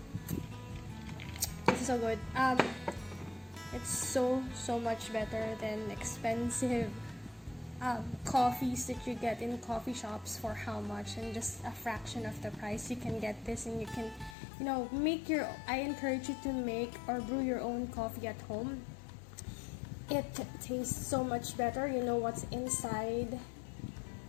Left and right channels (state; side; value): drops out; right; at 14.4 s